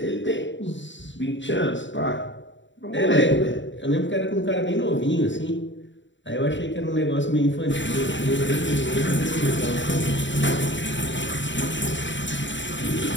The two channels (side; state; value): right; late; 0.54 ms